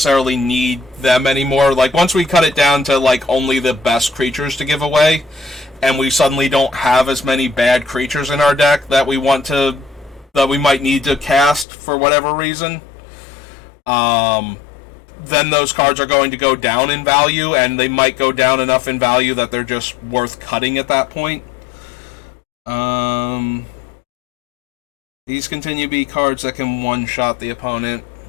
need them anymore. Like, once we cut it down to, like, only the best creatures to give away, and we suddenly don't have as many bad creatures in our deck that we might need to cast for whatever reason, then those cards are going to go down in value, and they might go down enough in value that they're just worth cutting at that point. These continue to be cards that can one-shot the opponent.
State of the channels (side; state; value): right; drops out; at 11.7 s